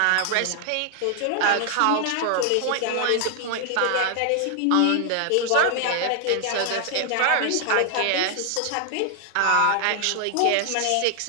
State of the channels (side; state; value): both; different; correlation 0.00